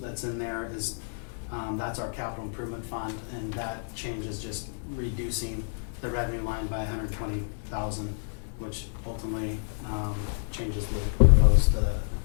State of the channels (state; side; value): silent; right; digital silence